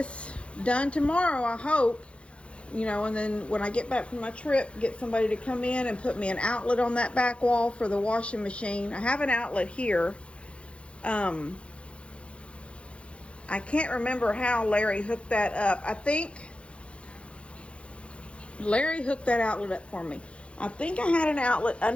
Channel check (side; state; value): right; late; 0.060 ms